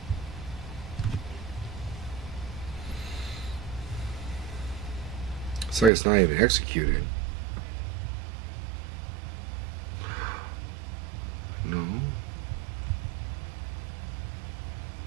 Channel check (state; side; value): drops out; left; at 5.9 s